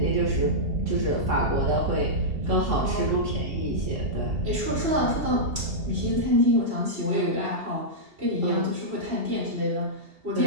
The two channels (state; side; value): late; left; 2.7 ms